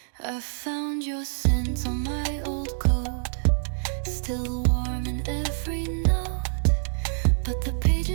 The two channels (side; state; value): left; silent; digital silence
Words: I found your scent on my old coat, still warm in every note. But the